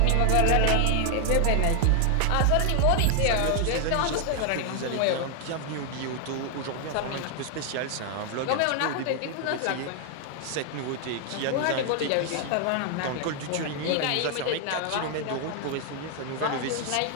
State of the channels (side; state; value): both; different; correlation 0.00